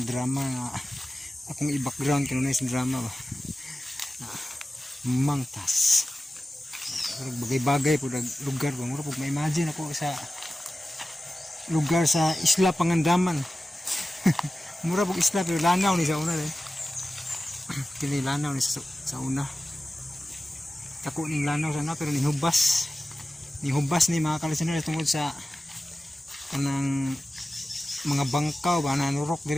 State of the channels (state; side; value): normal; both; correlation 0.95